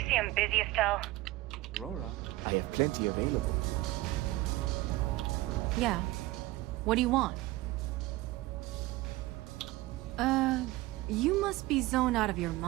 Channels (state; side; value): quieter; left; 18.6 dB